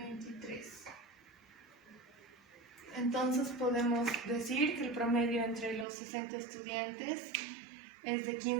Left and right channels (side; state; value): left; drops out; at 5.9 s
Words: Entonces podemos decir que el promedio entre los 60 estudiantes es de